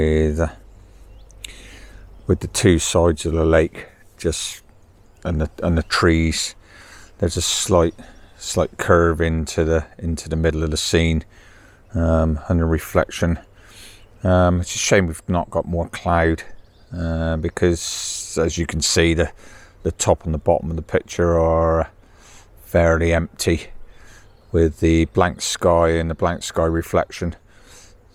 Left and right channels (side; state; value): both; identical; correlation 1.00